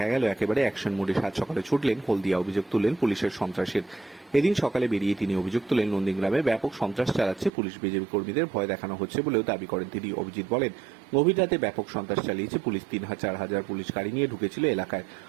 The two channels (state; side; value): drops out; left; at 7.5 s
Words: গেল একেবারে অ্যাকশন মোডে। সাত সকালে ছুটলেন হলদিয়া, অভিযোগ তুললেন পুলিশের সন্ত্রাসের। এদিন সকালে বেরিয়ে তিনি অভিযোগ তুলেন নন্দীগ্রামে ব্যাপক সন্ত্রাস চালাচ্ছে পুলিশ, বিজেপি কর্মীদের ভয় দেখানো হচ্ছে বলেও দাবি করেন তিনি। অভিজিৎ বলেন, গভীর রাতে ব্যাপক সন্ত্রাস চালিয়েছে পুলিশ। 3,000-4,000 পুলিশ গাড়ি নিয়ে ঢুকেছিল এলাকায়।